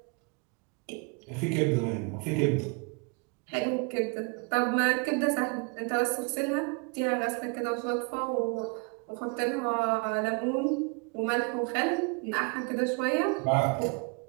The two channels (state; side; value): quieter; left; 33.4 dB